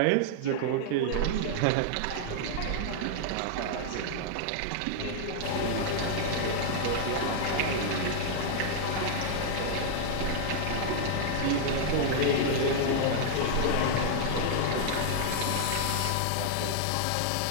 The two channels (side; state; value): both; different; correlation -0.01